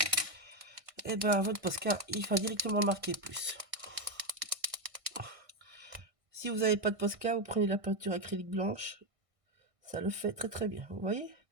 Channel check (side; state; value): left; late; 1.6 ms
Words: et ben votre Posca, il va directement marquer plus. Si vous n'avez pas de Posca, vous prenez la peinture acrylique blanche, ça le fait très très bien, vous voyez.